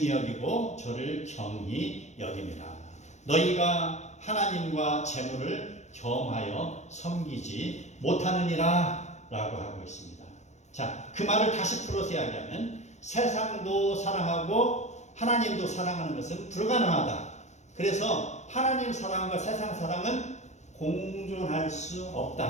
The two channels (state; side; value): late; right; 0.33 ms